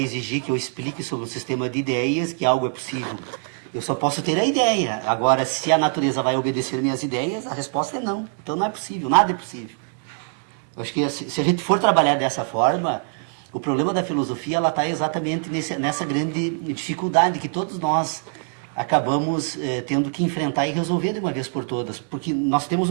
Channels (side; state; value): left; silent; 55 dB below the other